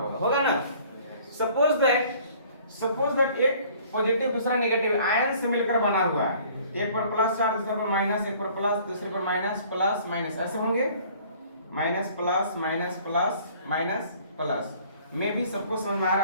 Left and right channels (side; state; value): both; inverted; correlation -0.54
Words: होगा ना। सपोज दैट एक पॉजिटिव दूसरा नेगेटिव आयन से मिलकर बना हुआ है। एक पर प्लस चार्ज, दूसरे पर माइनस, एक पर प्लस, दूसरे पर माइनस, प्लस माइनस ऐसे होंगे। Minus plus minus plus minus plus में भी सबको समझ में आ